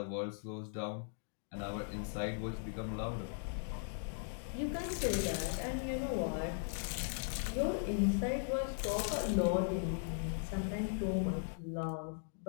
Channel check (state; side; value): silent; right; digital silence